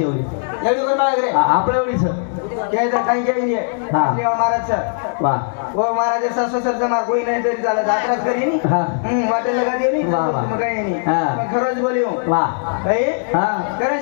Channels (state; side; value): silent; right; digital silence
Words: एवढी आपल्या एवढीच ते तर काही केली आहे महाराज वा वो महाराज सासू सरचं मार कोई नाही तरी चालत आपल्याच करी वाटेल लगा देऊ मग काही नाही खरंच बोलियो वा भाई करण